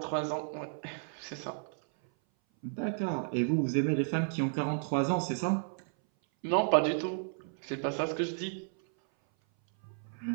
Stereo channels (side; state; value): left; silent; 56 dB below the other